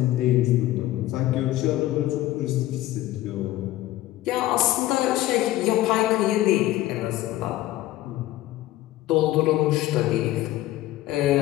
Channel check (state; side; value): quieter; right; 15.5 dB